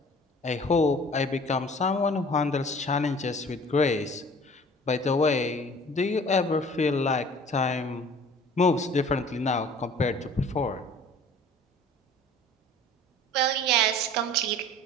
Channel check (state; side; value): normal; both; correlation 0.48